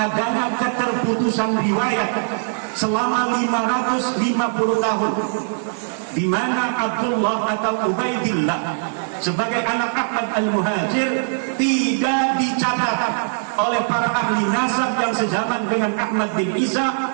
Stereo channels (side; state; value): left; silent; 60 dB below the other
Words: keterputusan riwayat selama 550 tahun, di mana Abdullah atau Ubaidillah sebagai anak Ahmad Al-Muhajir tidak dicatat oleh para ahli nasab yang sezaman dengan Ahmad bin Isa